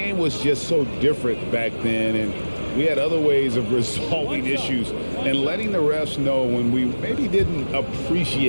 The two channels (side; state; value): both; inverted; correlation -1.00